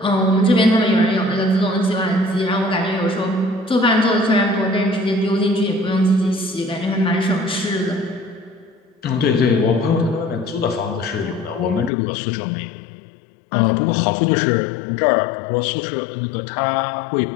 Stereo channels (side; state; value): right; drops out; at 11.9 s